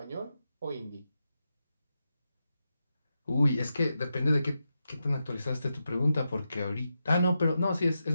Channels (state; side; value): inverted; both; correlation -0.88